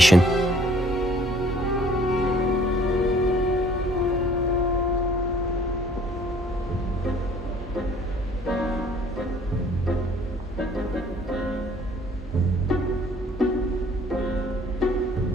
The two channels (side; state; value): both; normal; correlation 0.57